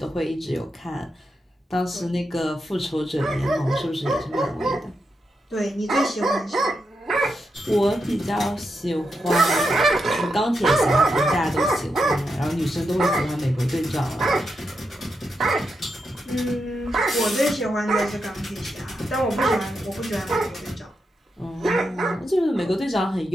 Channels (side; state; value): both; normal; correlation 0.85